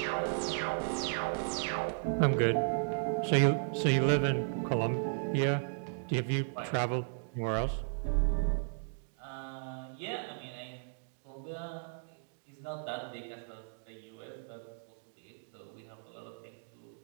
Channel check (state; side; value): silent; left; digital silence